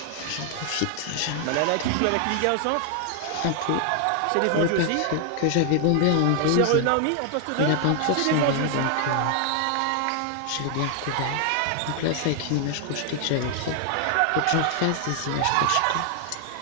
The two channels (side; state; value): both; different; correlation 0.00